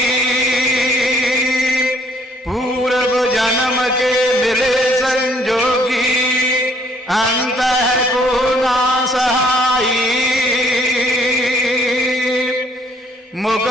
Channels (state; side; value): normal; both; correlation 0.64